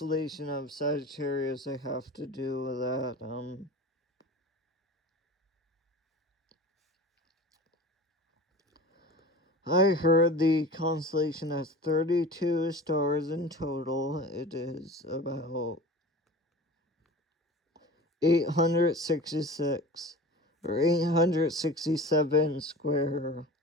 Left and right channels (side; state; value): both; normal; correlation 0.36